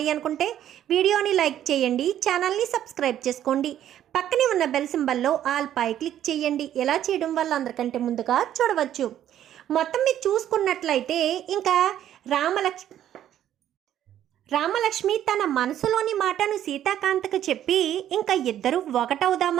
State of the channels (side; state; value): left; quieter; 11.2 dB